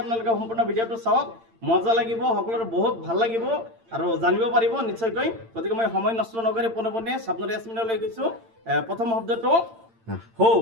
আপোনালোকে সম্পূৰ্ণ ভিডিঅ'টো চাওক, মজা লাগিব, সকলোৰে বহুত ভাল লাগিব আৰু জানিব পাৰিব নিশ্চয়কৈ। গতিকে মই সময় নষ্ট নকৰি পোনে স্বপ্নদী ইয়াসমিনলৈ গৈছোঁ। প্ৰথম শব্দটো হৌ,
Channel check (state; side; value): late; left; 8.8 ms